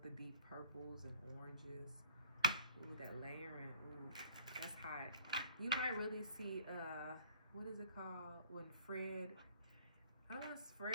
the deep purples and oranges. Ooh, that layering. Ooh, that's hot. You might really see what is it called when Fred? I don't know, it's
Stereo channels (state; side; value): inverted; both; correlation -0.54